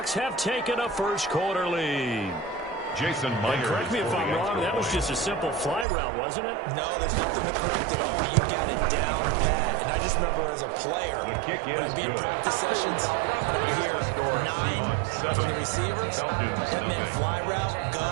have taken a first-quarter lead. Jason Myers. Correct me if I'm wrong, that was just a simple fly route, wasn't it? No, there's nothing to correct at all. You got it down pat. And I just remember as a player, when I'd be in practice sessions, and I'd hear 9 from the receivers, that meant fly route,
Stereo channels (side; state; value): left; drops out; at 5.9 s